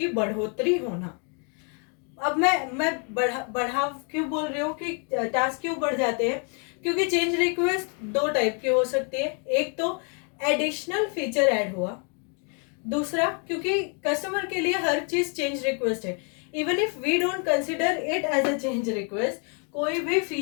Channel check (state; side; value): quieter; right; 38.8 dB